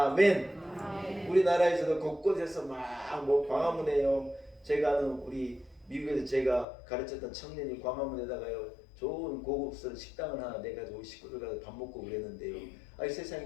아멘. 우리나라에서도 곳곳에서 막 뭐 광화문에요. 제가 아는 우리 미국에서 제가 가르쳤던 청년이 광화문에다가요 좋은 고급스러운 식당을 하나 내가지고 식구들 가서 밥 먹고 그랬는데요. 아이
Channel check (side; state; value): right; drops out; at 6.7 s